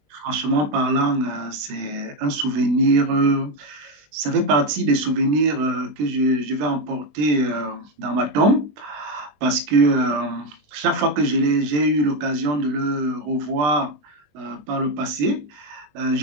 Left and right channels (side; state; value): left; late; 20 ms